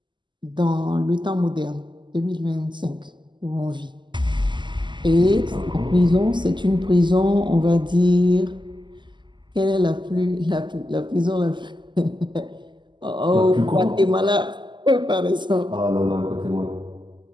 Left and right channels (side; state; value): left; late; 0.22 ms